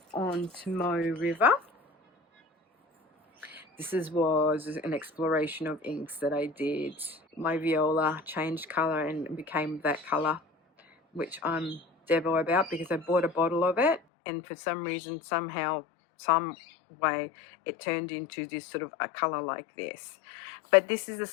on Tomoe River. This was an exploration of inks that I did. My viola changed colour and became that colour, which I'm devo about because I bought a bottle of it and for some reason, somehow, some way, it turned into this sort of a colour like this. But this is the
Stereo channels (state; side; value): drops out; right; at 14.0 s